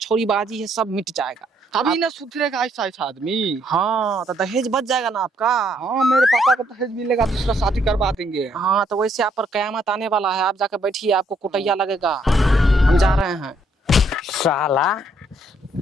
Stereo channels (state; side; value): normal; both; correlation 0.70